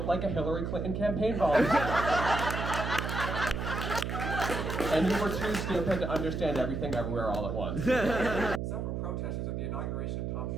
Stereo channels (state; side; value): noise; right; hum, 3 dB below the sound